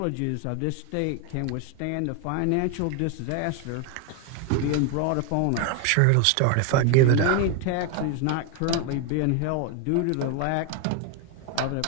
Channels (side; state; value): both; different; correlation 0.01